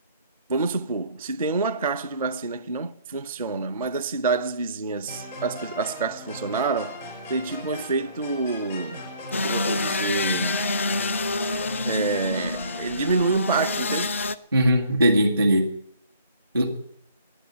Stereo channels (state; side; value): inverted; both; correlation -0.57